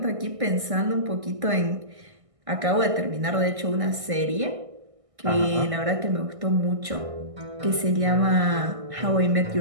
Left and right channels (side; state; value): left; late; 1.6 ms